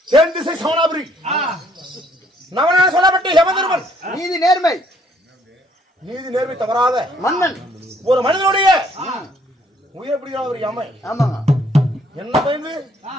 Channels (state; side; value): normal; both; correlation 0.65